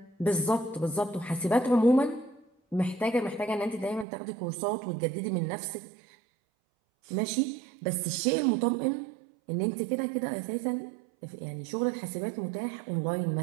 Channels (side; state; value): left; drops out; at 4.0 s